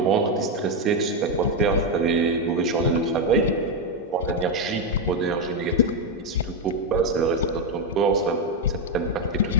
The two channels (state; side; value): normal; both; correlation 0.04